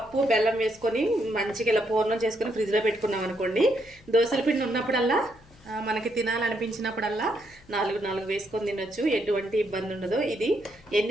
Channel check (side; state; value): left; noise; hum, 26 dB below the sound